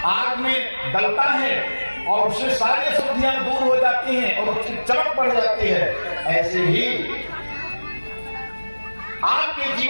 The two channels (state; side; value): inverted; both; correlation -1.00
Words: आग में डलता है और उससे सारी अशुद्धियां दूर हो जाती हैं और उसकी चमक बढ़ जाती है, ऐसे ही आपके